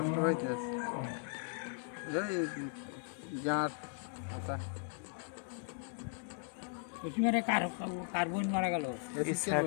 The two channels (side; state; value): right; silent; 53 dB below the other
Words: হইতে আছে এই গাঁট কথা। কার্বন মারা গেল